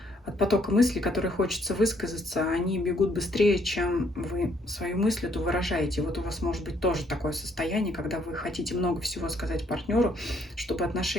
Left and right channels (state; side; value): normal; both; correlation 0.68